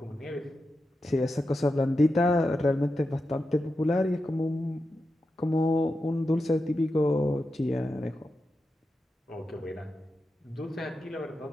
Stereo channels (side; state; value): both; normal; correlation 0.89